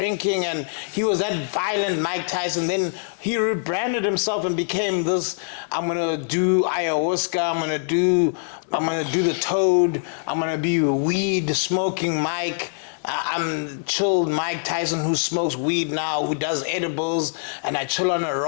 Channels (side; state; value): right; silent; digital silence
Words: and he was that violent Mike Tyson. Then he rebranded himself and became this, I'm gonna do ayahuasca, I'm gonna do the toad, I'm gonna be weed smoking Mike. I'm chilled Mike Tyson who smokes weed now, who does edibles, and I chill on a